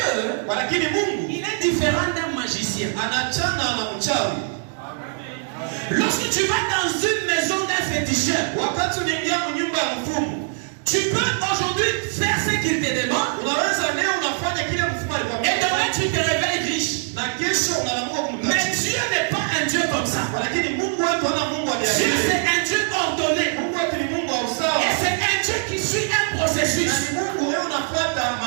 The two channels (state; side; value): silent; left; 58 dB below the other